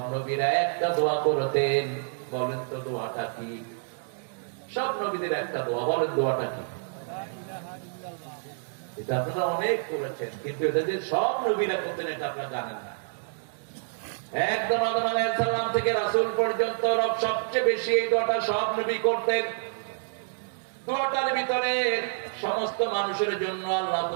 নবীরা একটা দোয়া করতেন। বলেন তো দোয়াটা কি? সব নবীদের একটা দোয়া, বলেন দোয়াটা কি? এটা আপনারা অনেক করেছেন, কিন্তু এটা যে সব নবীরা করতেন এটা আপনারা জানেন না। একদম আদম আলাইহিস সালাম থেকে রাসূল পর্যন্ত সবচেয়ে বেশি এই দোয়াটা সব নবী করতেন। দোয়াটার ভিতরে সমস্ত মানুষের জন্য আল্লাহ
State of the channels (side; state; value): left; silent; digital silence